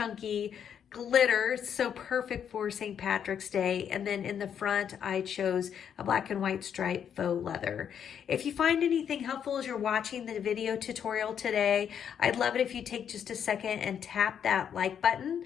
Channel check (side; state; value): right; quieter; 8.4 dB